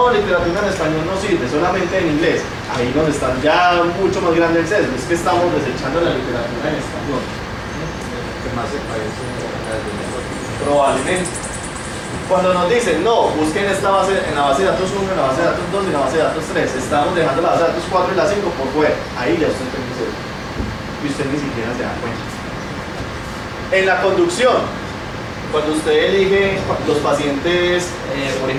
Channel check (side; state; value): both; identical; correlation 1.00